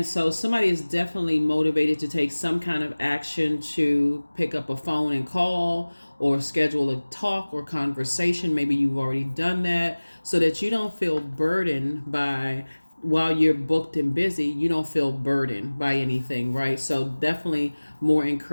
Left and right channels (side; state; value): both; inverted; correlation -1.00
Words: so somebody is definitely motivated to take some kind of action to pick up a phone and call or schedule a talk or conversation. Maybe you've already done that so that you don't feel burdened by, while you're booked and busy, you don't feel burdened by anything, right? So definitely more